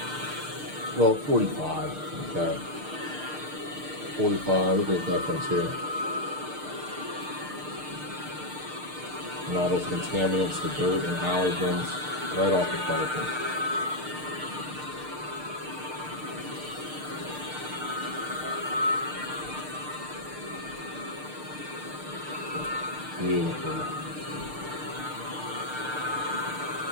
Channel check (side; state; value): left; late; 6.6 ms